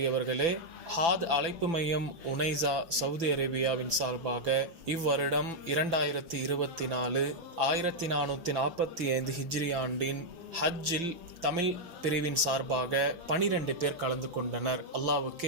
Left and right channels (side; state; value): left; late; 6.0 ms